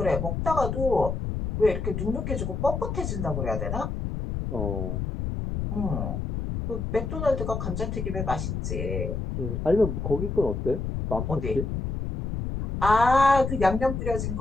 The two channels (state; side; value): noise; left; rumble, 3 dB below the sound